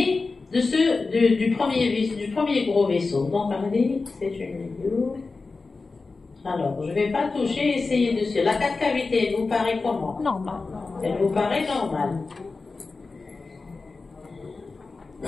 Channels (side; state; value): right; quieter; 4.0 dB